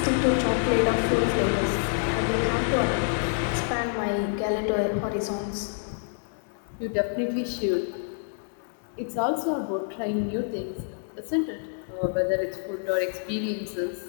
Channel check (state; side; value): silent; right; digital silence